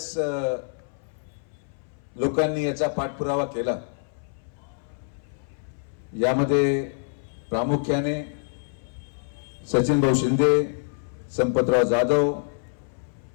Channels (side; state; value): right; silent; 59 dB below the other